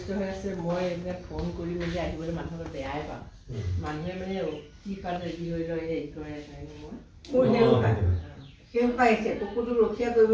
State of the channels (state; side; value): identical; both; correlation 1.00